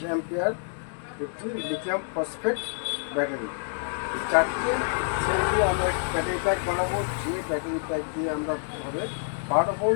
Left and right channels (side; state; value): right; silent; digital silence